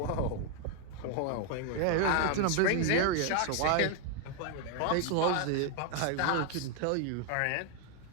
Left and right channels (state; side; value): different; both; correlation 0.00